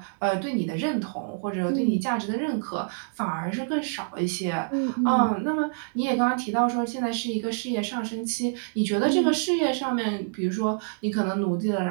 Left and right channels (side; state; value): left; silent; 60 dB below the other